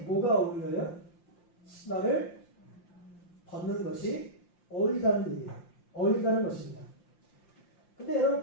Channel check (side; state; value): right; late; 5.8 ms